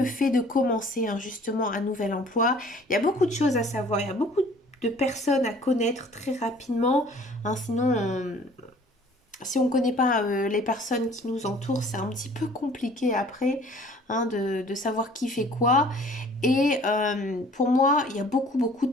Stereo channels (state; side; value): normal; both; correlation 0.52